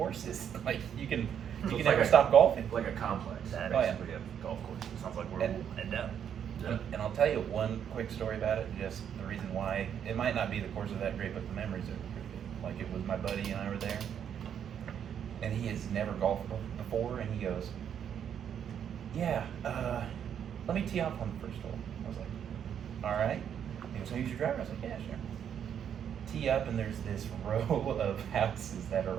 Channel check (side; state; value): left; quieter; 8.7 dB